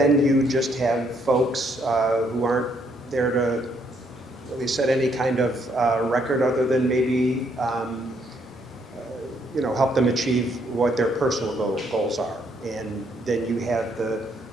you just have folks who aren't there to really set any kind of record other than maybe, you know, help them achieve what their personal goals are. And then you have the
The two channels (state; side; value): normal; both; correlation 0.71